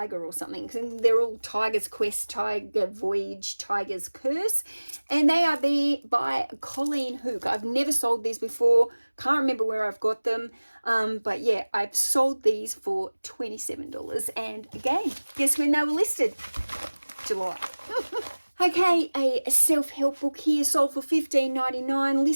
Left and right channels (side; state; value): both; inverted; correlation -1.00